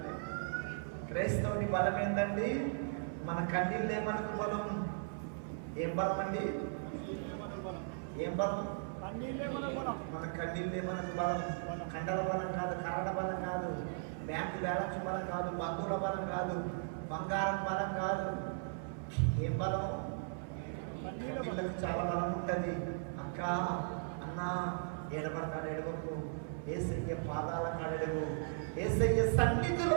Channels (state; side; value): silent; left; 53 dB below the other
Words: క్రైస్తవుని బలం ఏంటండి? మన కన్నీళ్ళే మనకు బలం. ఏం బలం అండి? ఏం బలం? మన కన్నీళ్ళే మనకు బలం. కండల బలం కాదు, కరడ బలం కాదు, బ్యాంకు బ్యాలెన్స్ బలం కాదు, బంధువుల బలం కాదు, బంగారం బలం కాదు. ఏం బలం? కన్నీళ్ళకు చాలా బలం ఉంటుంది. అక్క అన్న ఏడబడతాడు, ఎడవకు. యేసయ్య పాదాల కాడెడవు. యేసయ్య